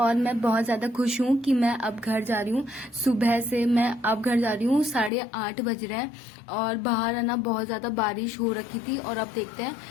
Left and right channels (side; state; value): right; drops out; at 5.1 s